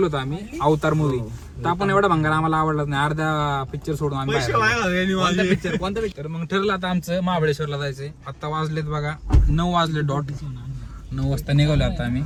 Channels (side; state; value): both; identical; correlation 1.00